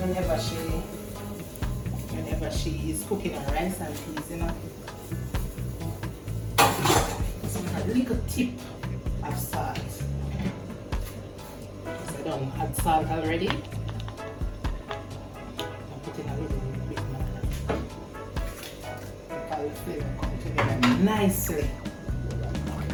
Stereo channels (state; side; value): identical; both; correlation 1.00